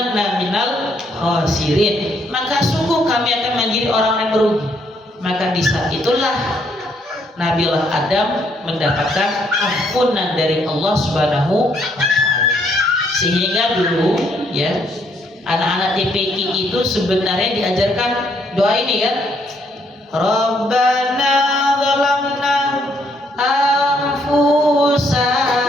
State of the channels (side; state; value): both; normal; correlation 0.71